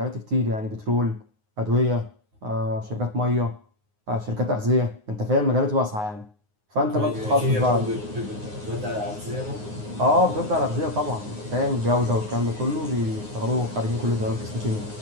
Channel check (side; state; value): left; late; 9.6 ms